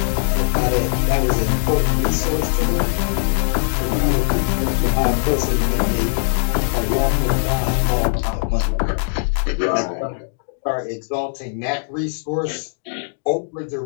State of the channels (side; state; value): right; silent; digital silence